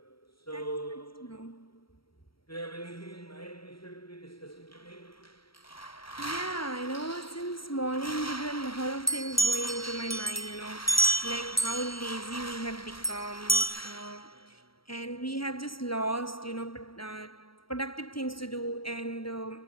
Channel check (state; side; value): late; right; 0.74 ms